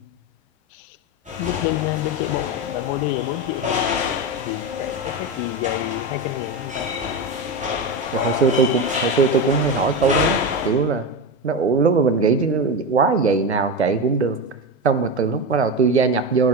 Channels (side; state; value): both; normal; correlation 0.18